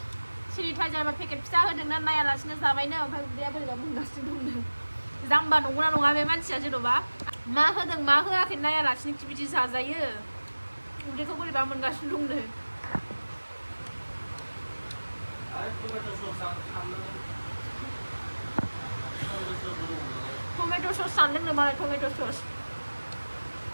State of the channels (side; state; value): both; inverted; correlation -1.00